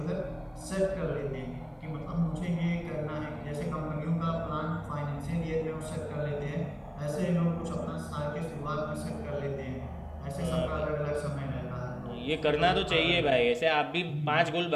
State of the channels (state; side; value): identical; both; correlation 1.00